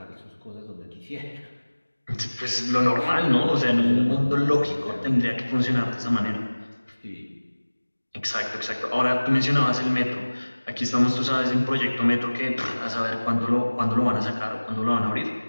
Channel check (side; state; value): both; inverted; correlation -1.00